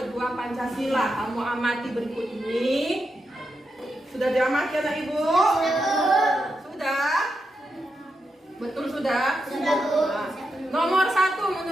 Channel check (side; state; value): both; normal; correlation 0.86